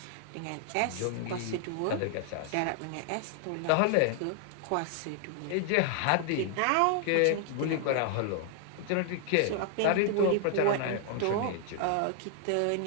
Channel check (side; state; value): both; different; correlation 0.00